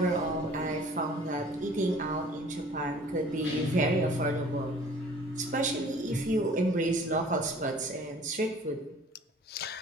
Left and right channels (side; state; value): both; normal; correlation 0.50